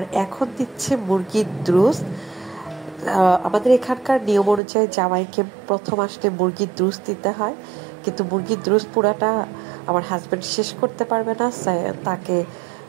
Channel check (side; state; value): left; drops out; at 4.6 s